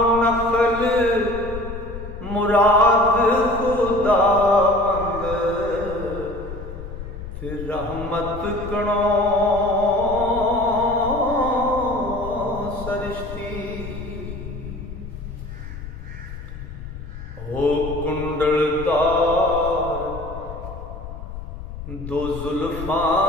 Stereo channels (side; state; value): left; noise; rumble, 10 dB below the sound